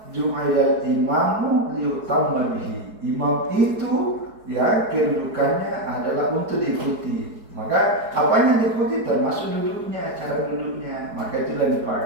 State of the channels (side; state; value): left; late; 4.7 ms